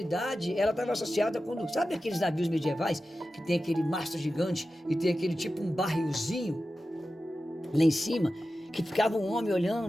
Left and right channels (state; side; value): normal; both; correlation 0.93